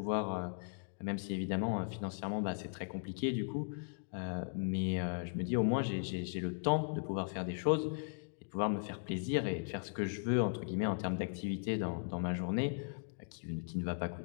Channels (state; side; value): silent; right; digital silence